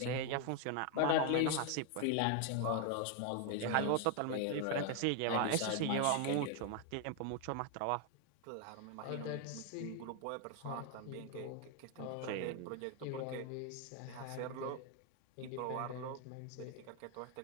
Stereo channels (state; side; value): different; both; correlation 0.01